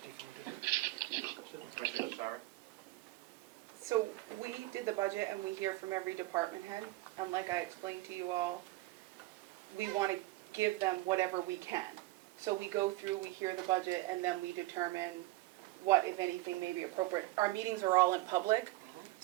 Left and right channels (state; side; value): quieter; left; 19.3 dB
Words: defunded it. So, Commissioner Sorry? So we did the budget and we hear from every department head, and like I explained to you all, we want to give them whatever we can. So we go through, we hear the budget, and then we determine what, if anything, may be appropriate. Our meetings are all in public,